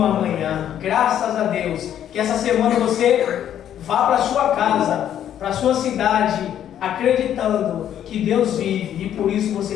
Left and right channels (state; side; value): quieter; right; 10.4 dB